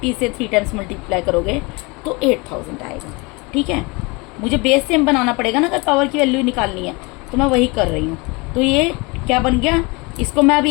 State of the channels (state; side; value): quieter; right; 27.0 dB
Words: से 3 टाइम्स मल्टीप्लाई करोगे तो 8,000 आएगा। ठीक है, मुझे बेस सेम बनाना पड़ेगा ना, अगर पावर की वैल्यू निकालनी है, तो मैं वही कर रही हूँ। तो ये क्या बन गया, इसको मैं अब